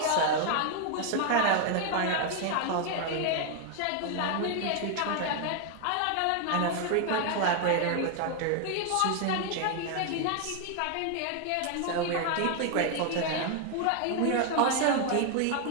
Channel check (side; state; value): both; different; correlation 0.00